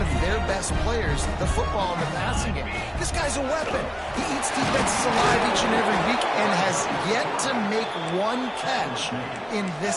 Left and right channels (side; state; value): both; identical; correlation 1.00